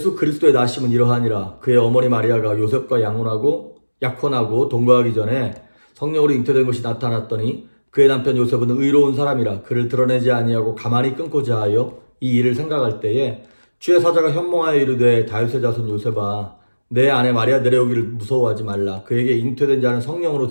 그리스도의 나심은 이러하니라. 그의 어머니 마리아가 요셉과 약혼하고 동거하기 전에 성령으로 잉태된 것이 나타났더니 그의 남편 요셉은 의로운 사람이라 그를 드러내지 아니하고 가만히 끊고자 하여 이 일을 생각할 때에 주의 사자가 현몽하여 이르되 다윗의 자손 요셉아, 내 아내 마리아 내려오기를 무서워하지 말라. 그에게 잉태된 자는 성령으로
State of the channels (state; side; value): inverted; both; correlation -1.00